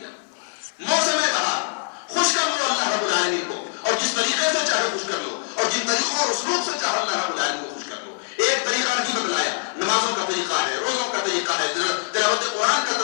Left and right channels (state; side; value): silent; right; 58 dB below the other